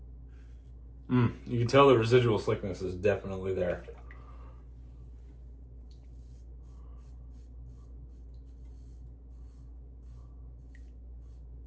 you can tell the residual slickness is definitely there.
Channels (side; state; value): both; identical; correlation 1.00